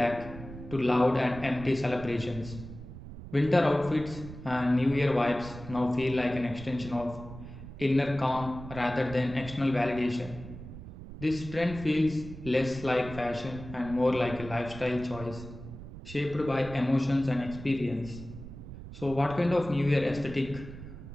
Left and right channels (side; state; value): right; noise; rumble, 13 dB below the sound